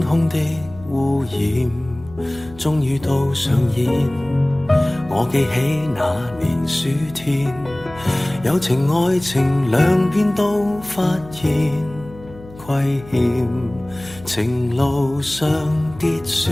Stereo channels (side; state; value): left; noise; hum, 19 dB below the sound